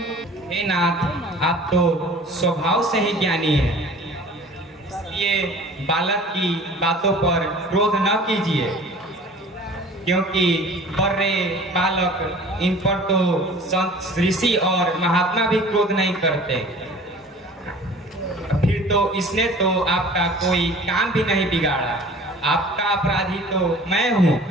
हे नाथ, आप तो स्वभाव से ही ज्ञानी हैं, इसलिए बालक की बातों पर क्रोध न कीजिए, क्योंकि बर्रे बालक इन पर तो संत ऋषि और महात्मा भी क्रोध नहीं करते। फिर तो इसने तो आपका कोई काम भी नहीं बिगाड़ा। आपका अपराधी तो मैं हूँ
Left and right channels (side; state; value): both; normal; correlation 0.46